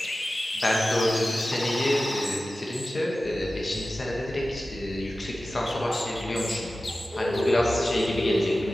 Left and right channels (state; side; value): normal; both; correlation 0.95